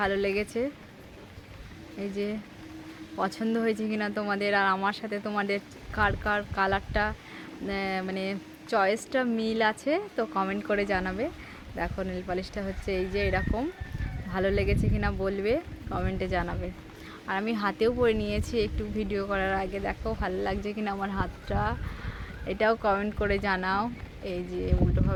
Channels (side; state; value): both; identical; correlation 1.00